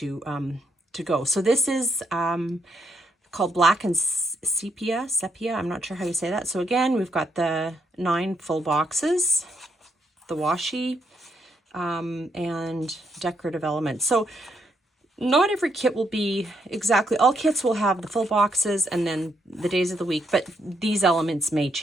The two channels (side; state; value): both; normal; correlation 0.76